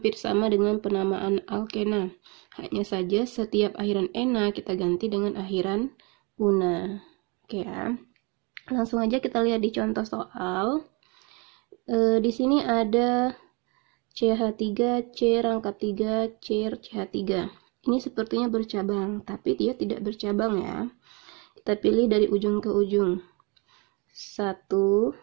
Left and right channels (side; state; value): left; quieter; 30.4 dB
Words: sama dengan penamaan alkena. Hanya saja setiap akhiran ena kita ganti dengan akhiran una. Oke ya. Langsung aja kita lihat di contoh soal. Di sini ada CH3, C rangkap 3, C CH3. Ini sepertinya bercabang, tapi dia tidak bercabang ya. Kita pilih dari ujung ke ujung. 1,